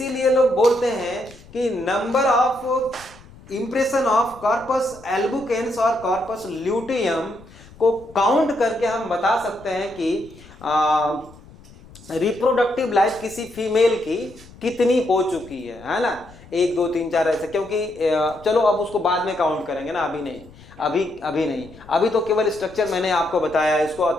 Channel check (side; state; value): left; noise; rumble, 22 dB below the sound